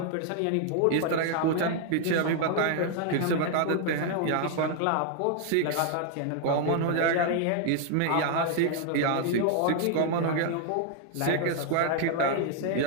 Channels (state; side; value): different; both; correlation 0.00